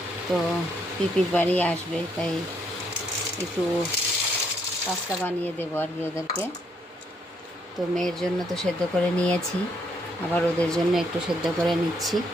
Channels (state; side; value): normal; both; correlation 0.72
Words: তো পিপির বাড়ি আসবে, তাই একটু পাস্তা বানিয়ে দেবো আর কি ওদেরকে। তো মেয়ের জন্য তো সেদ্ধ করে নিয়েছি, আবার ওদের জন্য একটু সেদ্ধ করে নিচ্ছি,